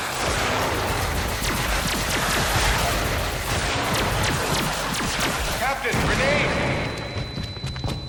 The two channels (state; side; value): identical; both; correlation 1.00